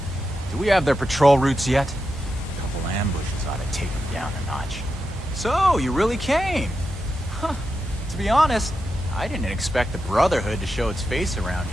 Do we have their patrol routes yet? A couple ambushes ought to take them down a notch. So, you really came? Huh. To be honest, I didn't expect the Brotherhood to show its face around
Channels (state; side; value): normal; both; correlation 0.87